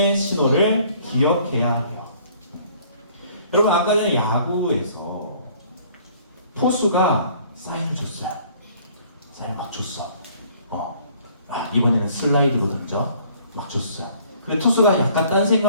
신호를 기억해야 해요. 여러분, 아까 전에 야구에서 포수가 사인을 줬어요. 사인 막 줬어. 이번에는 슬라이드로 던져. 막 줬어요. 근데 투수가 약간 딴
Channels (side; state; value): both; inverted; correlation -0.57